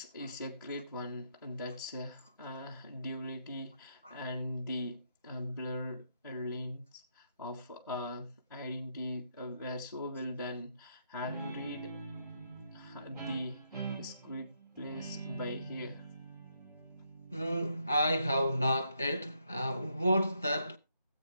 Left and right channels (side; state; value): both; inverted; correlation -0.77